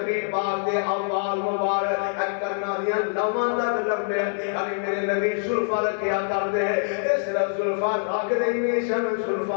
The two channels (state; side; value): silent; right; digital silence